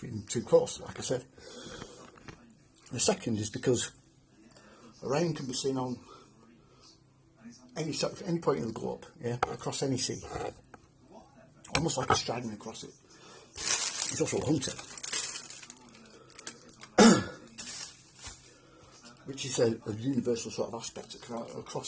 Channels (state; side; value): identical; both; correlation 1.00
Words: two coasts, like I said. The second is because Orion can be seen on any point in the globe, across any sea, almost like a striding across it. He's also a hunter, which is a universal sort of aspect